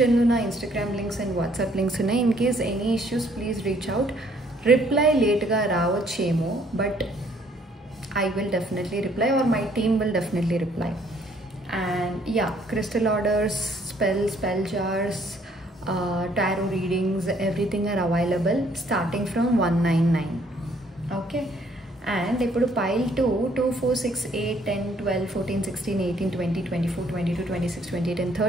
నా Instagram links and WhatsApp links ఉన్నాయి. In case any issues please reach out. Reply లేట్గా రావచ్చేమో, but I will definitely reply, or my team will definitely reply. And yeah, crystal orders, spell jars, tarot readings, everything are available starting from 199. Okay, and ఇప్పుడు pile 2 2 4 6 8 10 12 14 16 18 20 24 22 26 28 and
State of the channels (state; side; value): normal; both; correlation 0.64